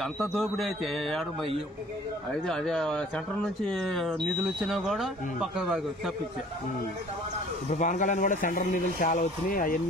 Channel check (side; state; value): both; normal; correlation 0.52